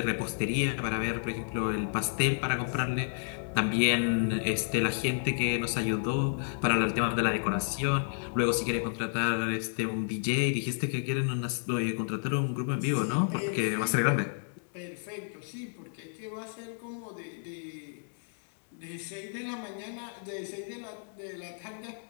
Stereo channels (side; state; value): right; silent; digital silence